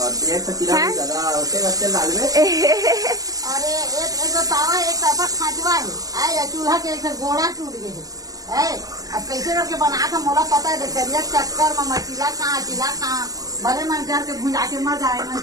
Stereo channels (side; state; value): left; late; 0.17 ms